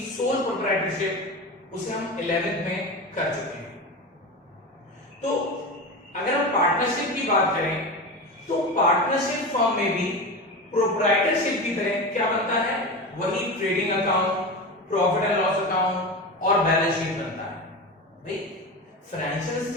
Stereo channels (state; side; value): normal; both; correlation 0.25